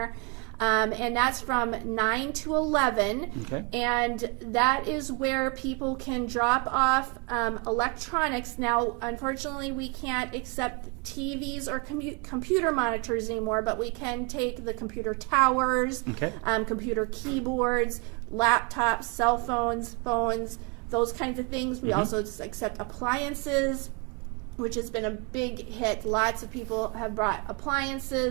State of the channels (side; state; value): left; quieter; 30.3 dB